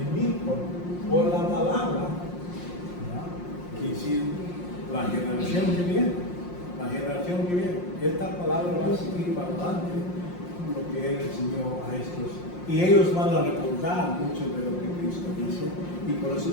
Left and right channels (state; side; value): late; right; 5.6 ms